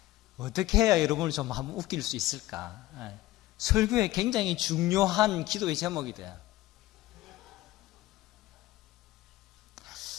어떻게 해야 여러분을 좀 한번 웃길 수 있을까? 설교에 굉장히 중요한 기도의 제목이 돼요.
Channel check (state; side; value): quieter; right; 16.9 dB